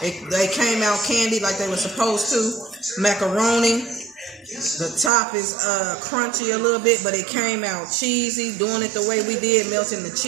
came out candied like they were supposed to. Macaroni. The top is crunchy a little bit, but it came out cheesy. Doing it the way we did, melting the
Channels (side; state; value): left; drops out; at 5.1 s